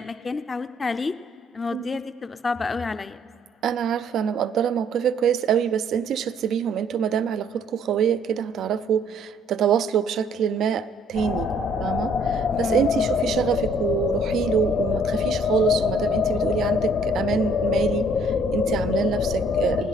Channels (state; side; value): normal; both; correlation 0.62